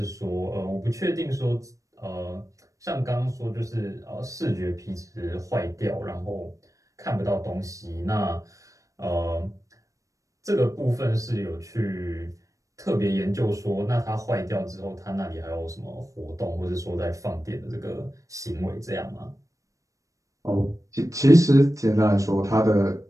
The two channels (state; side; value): late; left; 0.16 ms